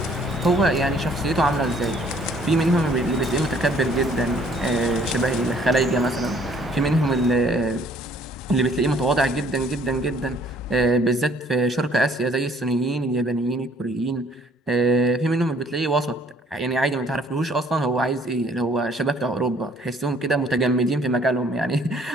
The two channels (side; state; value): both; normal; correlation 0.60